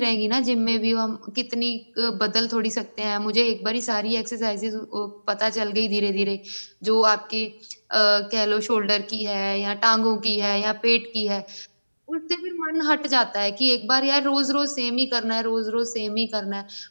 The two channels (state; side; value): inverted; both; correlation -1.00